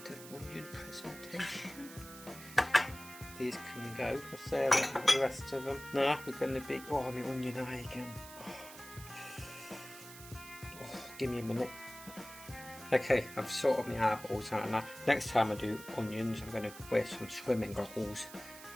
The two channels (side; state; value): right; noise; hiss, 15 dB below the sound